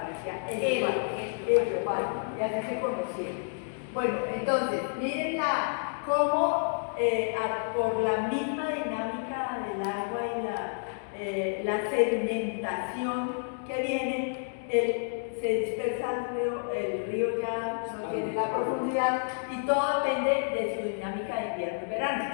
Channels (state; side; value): silent; right; digital silence